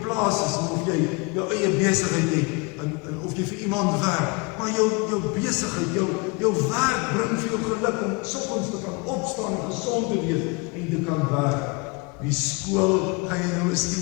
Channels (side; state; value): right; quieter; 28.0 dB